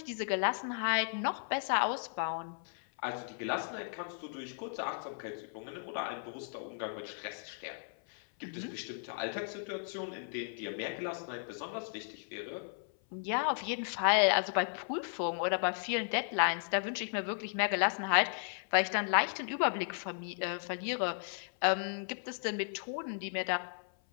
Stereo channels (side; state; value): right; silent; 54 dB below the other